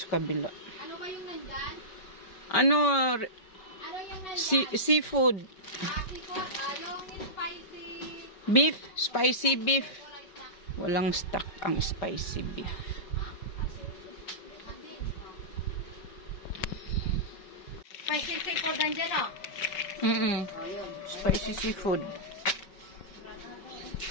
kabila. Ano ba yung nandyan? Ano, Ano yung nandyan? seafood. Seafood, yung spicy... Beef, spicy beef. Walang stock ang spicy beef. Spicy seafood nandiyan, oh. Ayun. Spicy seafood.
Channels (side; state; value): right; late; 5.3 ms